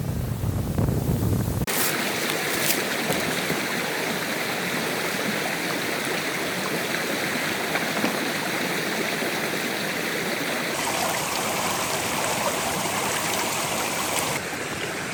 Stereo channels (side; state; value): both; identical; correlation 1.00